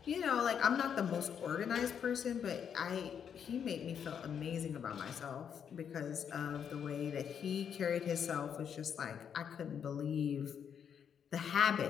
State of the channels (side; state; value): right; quieter; 7.9 dB